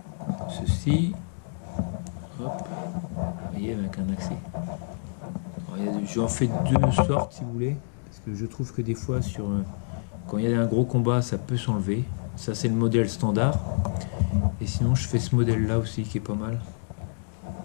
ceci. Hop, vous voyez, avec un accès. J'en fais deux sortes si vous voulez, parce que je trouve que des fois quand il y a un gros combat ça peut s'enlever. Ça c'est le modèle standard. Et sinon je fais ce modèle là aussi qui est pas mal.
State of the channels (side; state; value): right; silent; digital silence